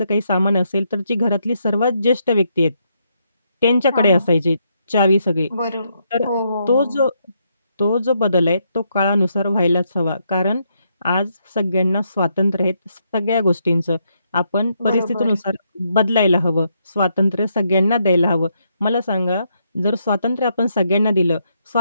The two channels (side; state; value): both; inverted; correlation -0.77